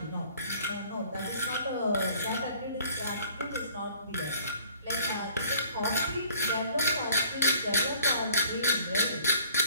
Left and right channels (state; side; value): inverted; both; correlation -0.56